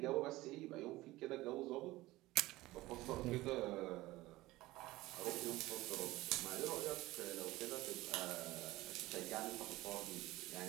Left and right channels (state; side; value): quieter; left; 18.5 dB